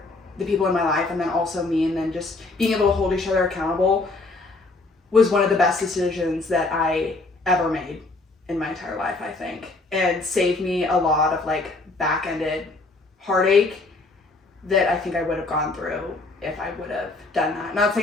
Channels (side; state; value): right; quieter; 3.3 dB